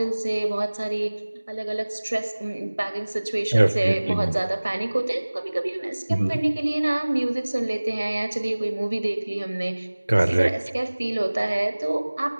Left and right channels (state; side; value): inverted; both; correlation -1.00